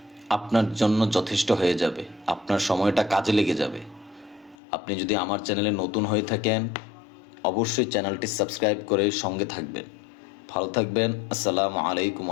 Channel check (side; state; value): right; drops out; at 4.5 s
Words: আপনার জন্য যথেষ্ট হয়ে যাবে, আপনার সময়টা কাজে লেগে যাবে। আপনি যদি আমার চ্যানেলে নতুন হয়ে থাকেন, অবশ্যই চ্যানেলটি সাবস্ক্রাইব করে সঙ্গে থাকবেন। ভালো থাকবেন। আসসালামু আলাইকুম